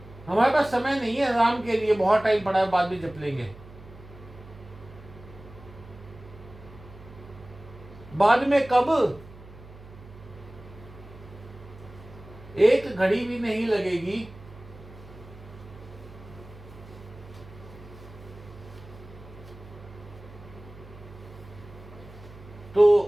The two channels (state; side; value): noise; right; hum, 18 dB below the sound